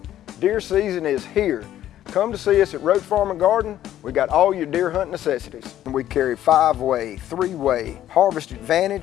Deer season is here. Come to see us at Roach Farm and Garden. We got all your deer hunt necessities. We carry 5-way, 3-way, Harvest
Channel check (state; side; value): quieter; right; 12.2 dB